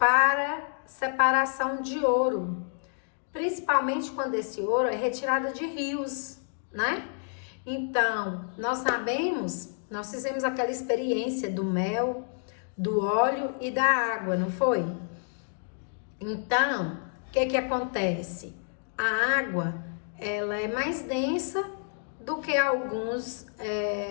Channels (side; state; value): right; silent; 59 dB below the other